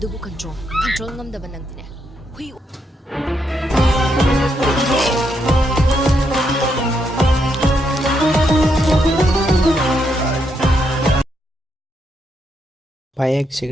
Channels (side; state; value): both; normal; correlation 0.79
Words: adubu control ngam da banang dine hui payak